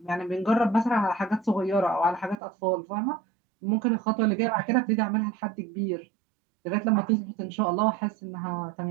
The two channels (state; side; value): drops out; left; at 2.4 s